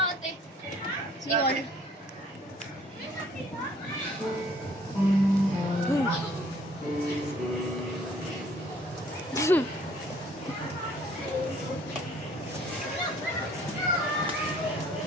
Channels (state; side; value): normal; both; correlation 0.58